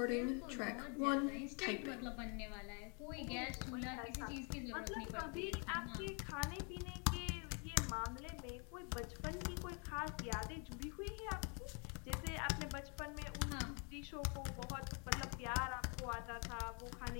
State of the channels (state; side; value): quieter; right; 37.3 dB